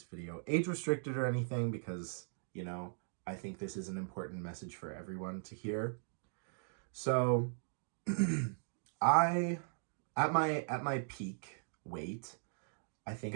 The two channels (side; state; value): left; silent; digital silence